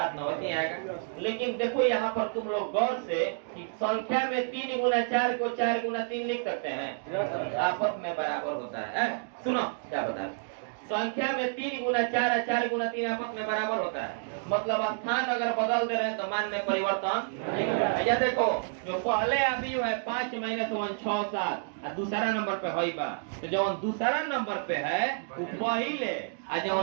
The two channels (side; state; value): left; silent; digital silence